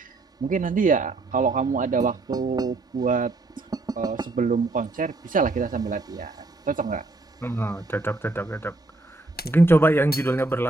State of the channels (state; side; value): quieter; left; 3.1 dB